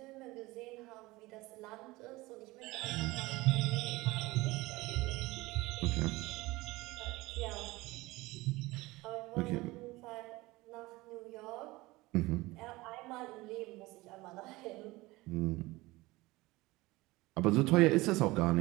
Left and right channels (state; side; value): quieter; left; 20.6 dB